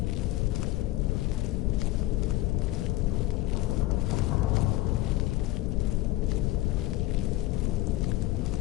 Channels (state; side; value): quieter; right; 17.3 dB